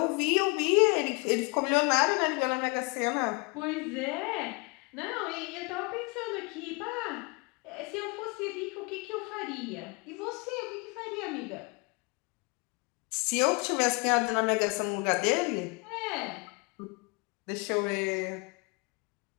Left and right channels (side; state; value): right; quieter; 30.0 dB